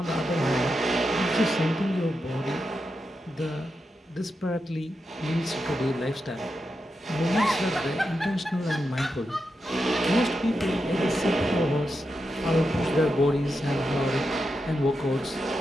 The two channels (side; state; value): both; normal; correlation 0.87